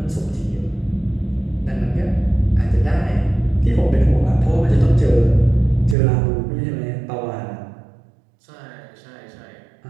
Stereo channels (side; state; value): left; drops out; at 6.0 s